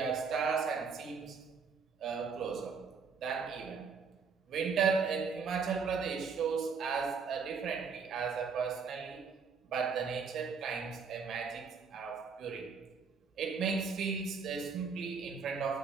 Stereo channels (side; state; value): left; quieter; 5.5 dB